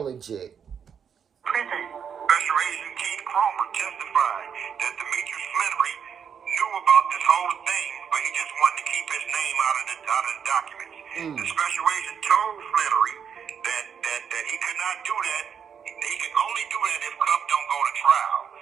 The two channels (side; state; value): left; quieter; 7.4 dB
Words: legit. Prison. Special Agent Keith Cromer testified that Demetrius Fleury knew about this whole thing, but he just wanted to keep his name out of the documents. The special agent told Fleury that he could not do that. He can only do that if Cuff don't go to trial.